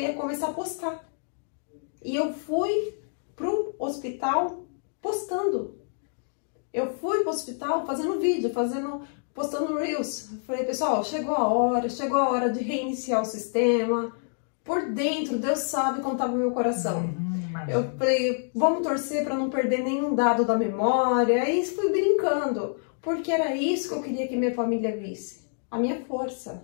começar a postar. E eu fui pro hospital postando. Eu fui pro hospital fazendo vídeo, postando Reels. Falei, pessoal, chegou a hora de reiniciar o sistema. Por dentro, Deus sabe como estava o meu coração. Eu falei, vamos torcer para não perder nenhum dado da memória. Aí fui brincando, porque era isso que eu queria que minha família visse. A minha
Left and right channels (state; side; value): silent; right; digital silence